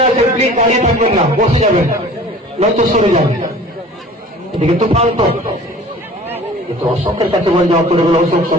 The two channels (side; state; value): both; normal; correlation 0.45